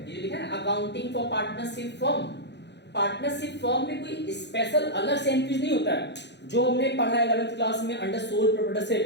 ये जो लिखा है ना accounting for partnership firm. Partnership firm में कोई स्पेशल अलग से एंट्रीज नहीं होता है, जो हमने पढ़ा है 11th क्लास में अंडर सोल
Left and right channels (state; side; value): late; right; 0.50 ms